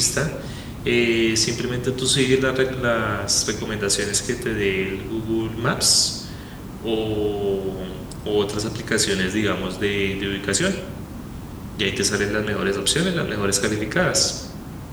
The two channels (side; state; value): both; identical; correlation 1.00